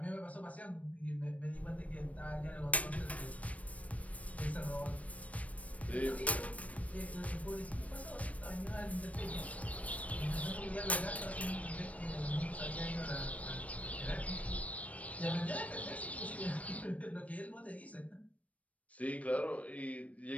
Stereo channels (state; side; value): late; right; 0.066 ms